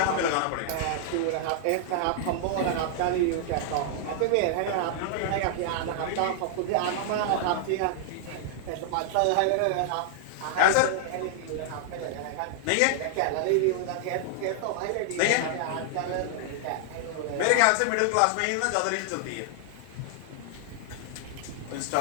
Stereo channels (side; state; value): both; different; correlation 0.00